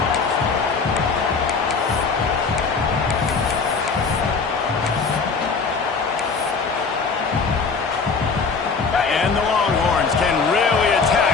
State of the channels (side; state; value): right; quieter; 4.9 dB